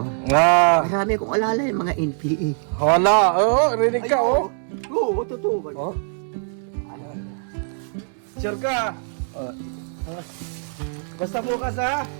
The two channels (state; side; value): silent; left; 63 dB below the other